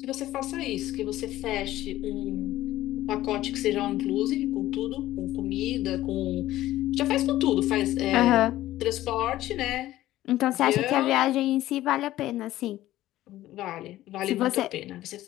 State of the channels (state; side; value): quieter; right; 14.9 dB